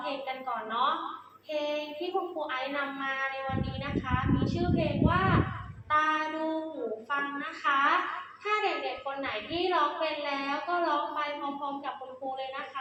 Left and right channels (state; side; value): identical; both; correlation 1.00